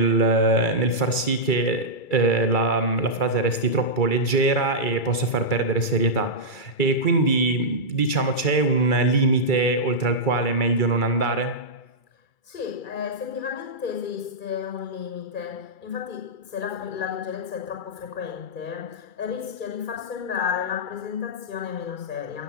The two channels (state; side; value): late; right; 2.3 ms